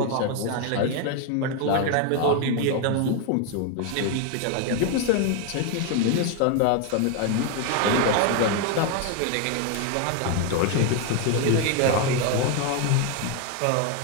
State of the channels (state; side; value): different; both; correlation 0.01